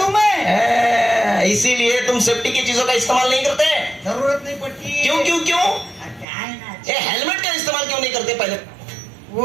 मैं। इसीलिए तुम सेफ्टी की चीजों का इस्तेमाल नहीं करते? जरूरत नहीं पड़ती। क्यों क्यों क्यों? क्या है ना, ये हेलमेट का इस्तेमाल क्यों नहीं करते पहले?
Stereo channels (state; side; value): drops out; left; at 6.2 s